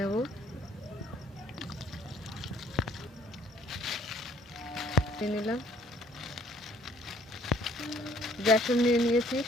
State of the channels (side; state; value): both; normal; correlation 0.59